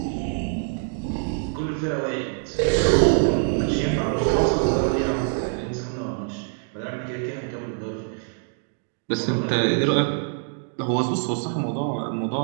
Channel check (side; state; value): left; silent; 57 dB below the other